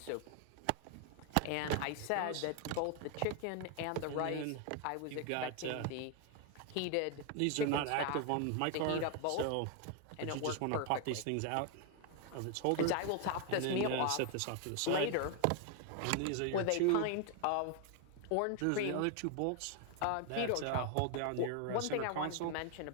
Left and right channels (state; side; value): different; both; correlation 0.00